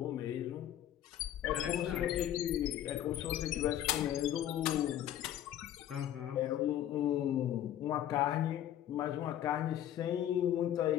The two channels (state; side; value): quieter; right; 11.5 dB